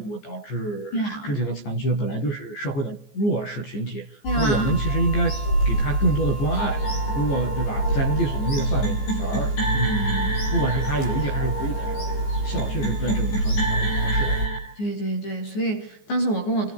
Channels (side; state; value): right; late; 14 ms